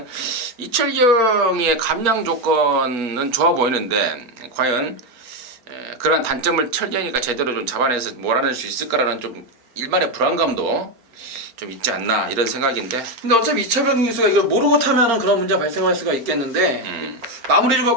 이철경의 감량 조건은 좋아 보이는데 과연 그런 단점을 철경이가 제대로 좀 잡아내서 몰아낼 수 있을까라는 좀 일말의 불안감도 좀 있지 않나 이런 생각인데. 근데 어차피 이철경 기수가 이걸 모르고 타면은 그런 문제가 발생할 수가 있겠는데 마무리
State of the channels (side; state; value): left; late; 4.4 ms